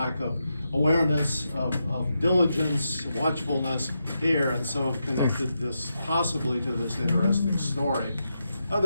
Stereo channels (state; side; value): inverted; both; correlation -0.86